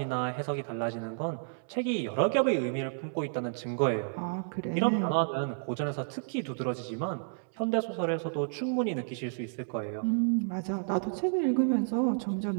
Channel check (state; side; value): silent; left; digital silence